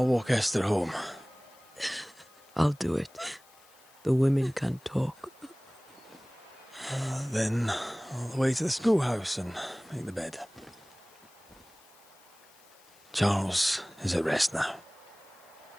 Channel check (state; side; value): noise; left; hiss, 27 dB below the sound